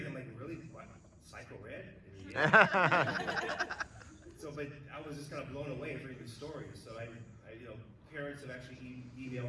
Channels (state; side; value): identical; both; correlation 1.00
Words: like, really, what, Psycho Red? And, yeah. So, but I was just kind of blown away hearing these stories. So I you know, parents have actually